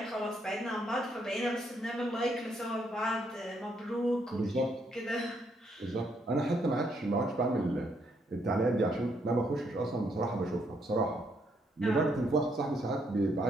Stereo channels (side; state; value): both; normal; correlation 0.74